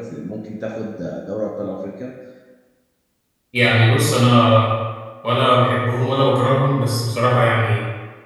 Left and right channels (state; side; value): identical; both; correlation 1.00